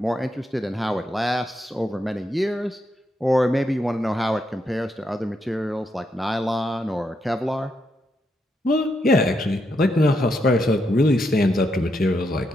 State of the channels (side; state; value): both; normal; correlation 0.80